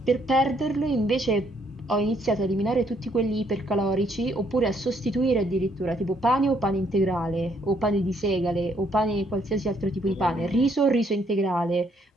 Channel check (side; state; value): both; normal; correlation 0.69